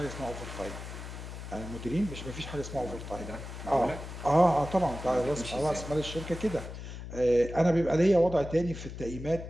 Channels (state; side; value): noise; left; hum, 10 dB below the sound